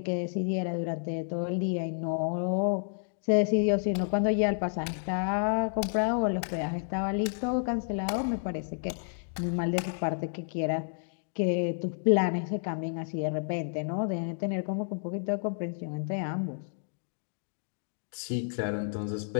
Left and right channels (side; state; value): right; silent; digital silence